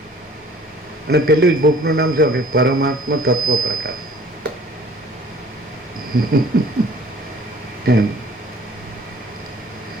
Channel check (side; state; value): both; normal; correlation 0.52